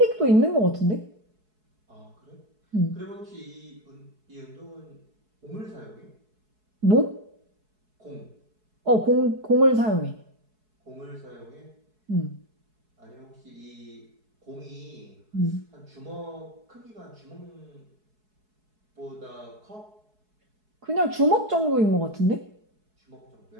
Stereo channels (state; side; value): late; left; 4.7 ms